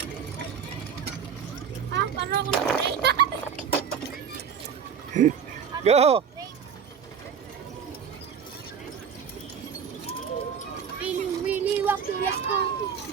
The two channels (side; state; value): left; quieter; 7.2 dB